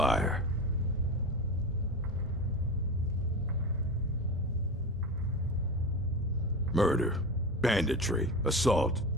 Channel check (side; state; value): both; normal; correlation 0.25